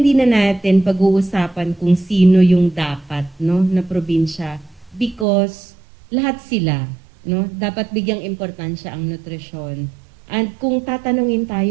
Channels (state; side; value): drops out; left; at 5.2 s